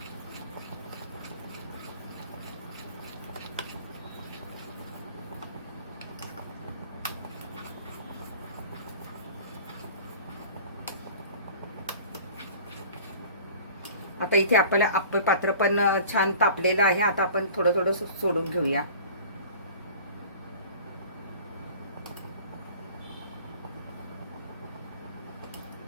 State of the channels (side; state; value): both; inverted; correlation -0.44